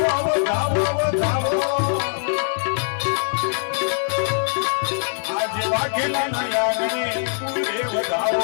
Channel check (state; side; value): silent; right; digital silence